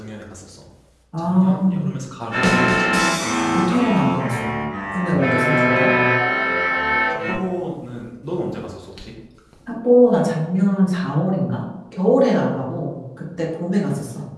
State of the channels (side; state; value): both; identical; correlation 1.00